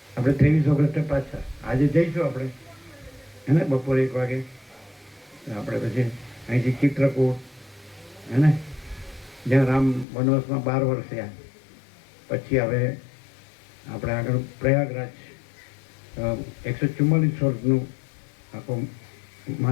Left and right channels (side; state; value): right; drops out; at 10.1 s